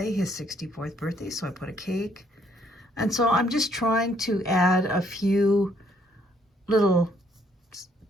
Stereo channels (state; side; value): normal; both; correlation 0.68